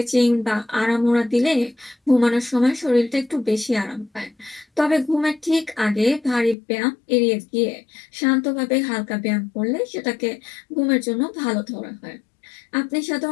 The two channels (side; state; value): right; drops out; at 6.6 s